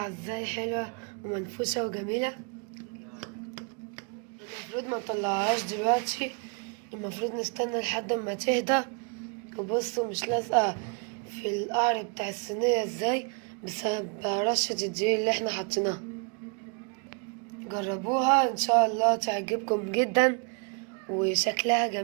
ازاي حلوة ومنفوشة وجميلة. المفروض ما نطلعهاش دلوقتي، المفروض نستنى لحد ما تهدى. وبصوا مش لازقة في القعر بتاع الصينية ازاي بسبب رشة الدقيق اللي احنا حطيناها. جربوها ان شاء الله تعجبكم جدا، وشكلها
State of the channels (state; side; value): quieter; left; 36.4 dB